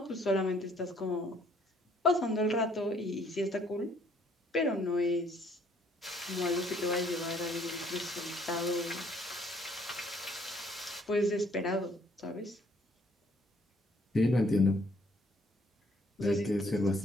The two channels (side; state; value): both; normal; correlation 0.63